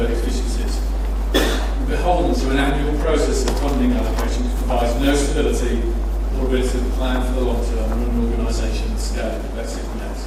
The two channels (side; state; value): both; identical; correlation 1.00